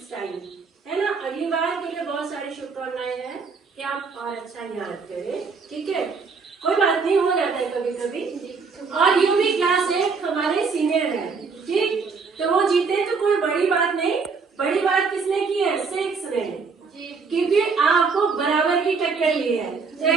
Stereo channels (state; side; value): quieter; left; 4.9 dB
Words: और अच्छा याद करें, ठीक है, कोई बात नहीं, हो जाता है कभी कभी। और यू भी क्लास 8 हमारे सीनियर है, ठीक, तो वो जीते तो कोई बड़ी बात नहीं। बड़ी बात किसने की है? 6 ने, क्योंकि आपको बराबर की टक्कर ली है, तो